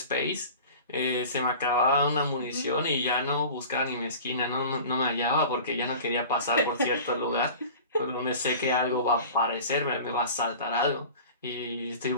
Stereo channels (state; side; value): inverted; both; correlation -0.39